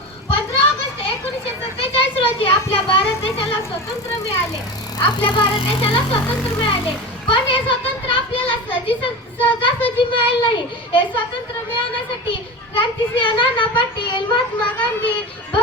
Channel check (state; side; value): normal; both; correlation 0.27